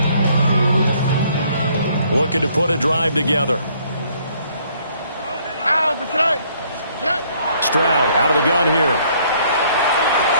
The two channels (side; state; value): both; inverted; correlation -0.64